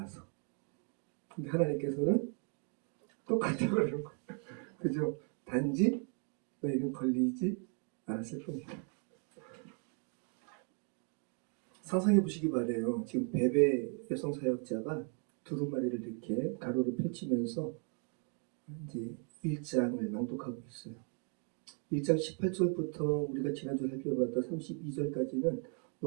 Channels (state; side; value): quieter; left; 39.2 dB